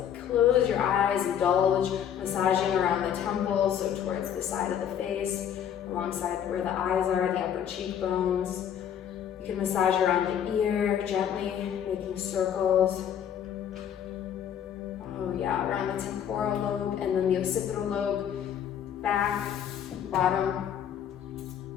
Close your eyes, indulge, massaging around the temples, so towards the side of the face, alongside where the eyes are, the upper cheekbones. You can massage around the ear, gently making circles. Oh yeah, around the temporal lobe and then the occipital lobe, back, bottom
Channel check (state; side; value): quieter; right; 9.2 dB